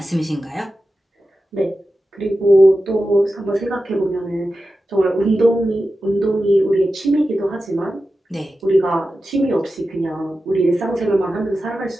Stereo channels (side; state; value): both; normal; correlation 0.92